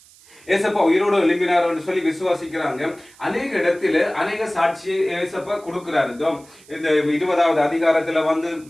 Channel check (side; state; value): right; noise; hiss, 25 dB below the sound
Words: ஏசப்பா உயிரோடு எழும்பினார் சொல்லி விசுவாசிக்கிறாங்க. அநேக இடத்துல அநேக சாட்சி ஏசப்பா கொடுக்கிறாரு. இந்த 20வது அதிகாரத்துல வந்து